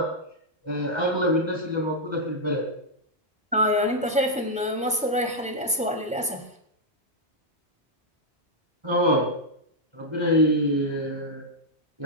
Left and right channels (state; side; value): normal; both; correlation -0.04